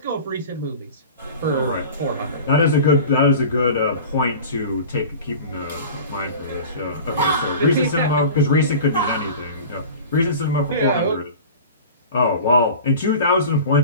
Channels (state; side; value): inverted; both; correlation -0.37